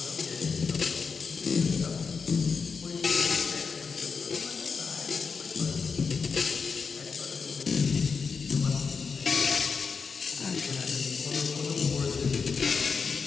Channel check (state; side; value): quieter; right; 5.3 dB